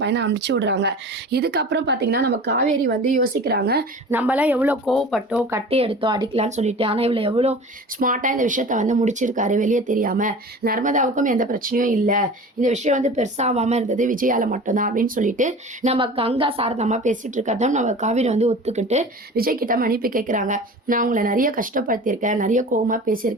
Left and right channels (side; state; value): both; normal; correlation 0.38